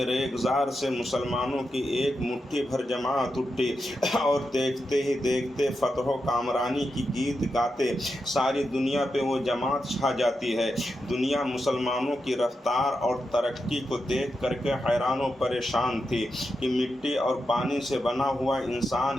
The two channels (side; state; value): both; normal; correlation 0.87